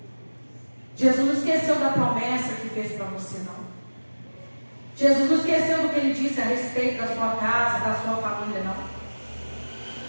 Jesus não esqueceu da promessa que fez para você, não. Jesus não esqueceu do que Ele disse a respeito da sua casa, da sua família, não.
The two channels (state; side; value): inverted; both; correlation -1.00